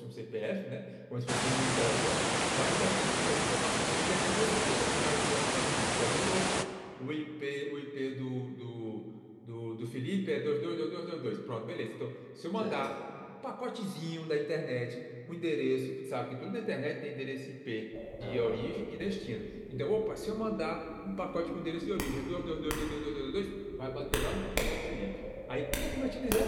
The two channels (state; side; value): identical; both; correlation 1.00